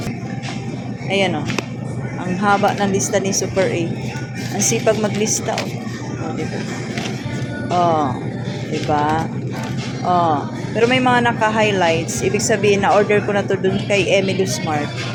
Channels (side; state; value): both; identical; correlation 1.00